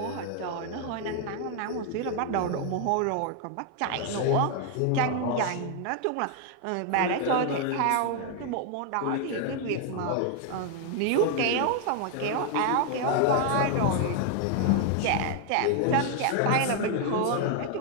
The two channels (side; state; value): both; different; correlation 0.00